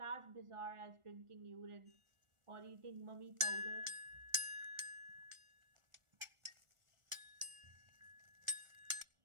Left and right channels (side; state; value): left; late; 1.4 ms